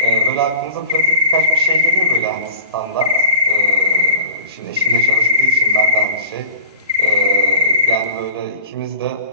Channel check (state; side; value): inverted; both; correlation -0.39